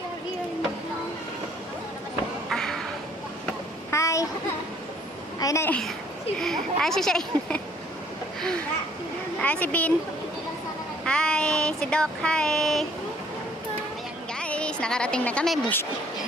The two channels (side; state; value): both; normal; correlation 0.60